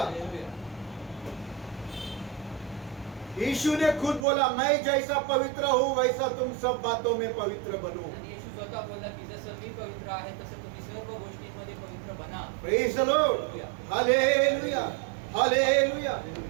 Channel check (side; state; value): left; drops out; at 4.2 s